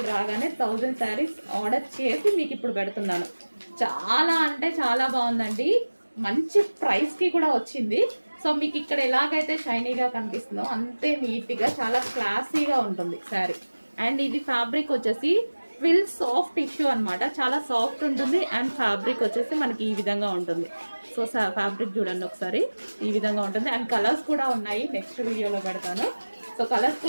రాగానే 1000 శారీస్ ఆర్డర్ చేసి మీకు ఇప్పుడు పెడుతున్నాను. చాలా అంటే చాలా బాగుందండి. మంచి ప్రైస్కి కూడా వచ్చింది. సో మీకు ఇక్కడ ఎలాగైతే షైనీగా కనిపిస్తుందో అంతే నీట్గా చాలా క్లాసీగా ఉంటుంది శారీ. అండ్ ఇది ఫ్యాబ్రిక్ వచ్చేసి ట్విల్ సాఫ్ట్ టిష్యూ అనమాట. చాలా సాఫ్ట్ ఉంటుంది. అండ్ ఫ్యాబ్రిక్ వచ్చేసి మనకి ఈ విధంగా ఉంటుంది. సో ఫ్యాబ్రిక్ చూడండి ఒకసారి, ఈ విధంగా ఉంటుంది. అండ్ కలర్స్ కూడా ఉన్నాయి, నెక్స్ట్ వీడియోలో పెడతాను. సో కలర్స్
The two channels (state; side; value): inverted; both; correlation -1.00